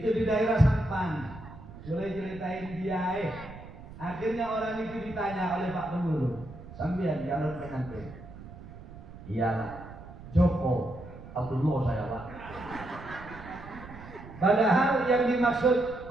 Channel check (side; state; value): right; noise; rumble, 15 dB below the sound